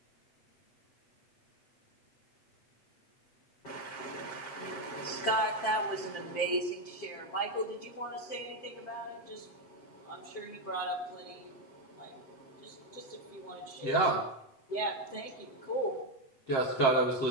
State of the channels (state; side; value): late; right; 7.6 ms